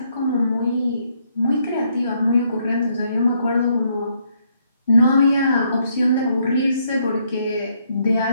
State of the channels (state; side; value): inverted; both; correlation -0.72